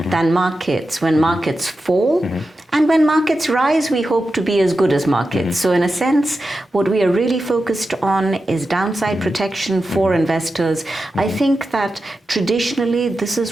than markets when markets fall. And when markets rise, we hope to be as good as markets. So in a sense, what we are really focused on is downside protection for investors. I think that traditionally, this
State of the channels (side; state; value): both; normal; correlation 0.91